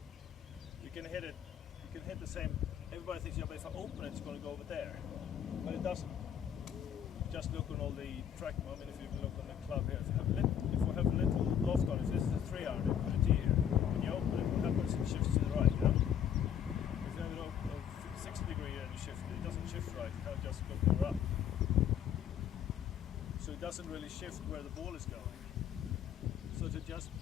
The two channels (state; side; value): quieter; right; 9.1 dB